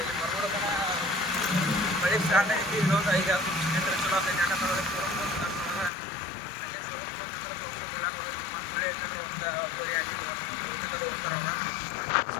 ಇಲ್ಲಿ ಬರ್ಬೋದನ್ನ ಮಳೆ ಸ್ಟಾರ್ಟ್ ಆಗೈತಿ. ಇನ್ನೊಂದು 5-6 ನಿಮಿಷ ಚಲೋ ಆಗ್ತೈತಿ. ಯಾಕಂತಂದ್ರೆ ಶೋರೂಮ್ ಬಂದು ಅಲ್ಲೇ ಶೋರೂಮ್ ಬಂದ್ರೆ ತೋರಿಸೋದಿಲ್ಲ ಕೊಡೋದು. ಮತ್ತು ಮಳೆ ಐತಂದ್ರೆ ಒಂದು ಗೋರಿ ಆಗಿತ್ತು ಊಟಕ್ಕದು ಹೋಗ್ತಾರೆ ಅವ್ರ. ಸೊ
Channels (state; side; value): drops out; right; at 5.9 s